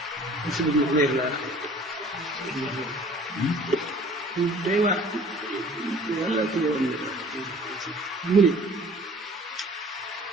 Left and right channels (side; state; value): both; normal; correlation 0.50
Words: Muslim ibnu Umayr la day waar wala ci la woon mu ne